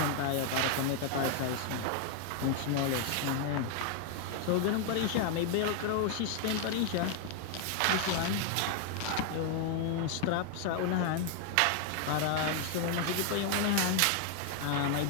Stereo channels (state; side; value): different; both; correlation 0.00